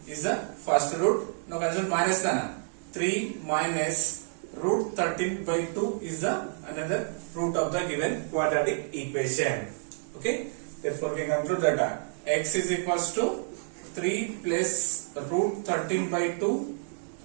is the first root. Now consider minus 3 minus root 13 by 2 is the another root of the given quadratic equation. Okay. Therefore we can conclude that x is equals to 3 plus root 13 by 2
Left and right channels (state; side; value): silent; left; digital silence